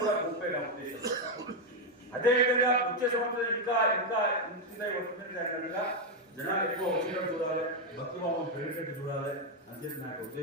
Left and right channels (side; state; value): both; normal; correlation 0.03